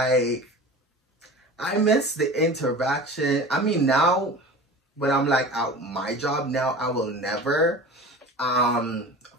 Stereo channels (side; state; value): both; normal; correlation 0.36